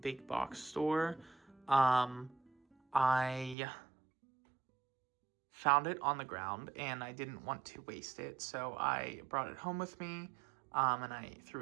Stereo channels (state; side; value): drops out; left; at 3.6 s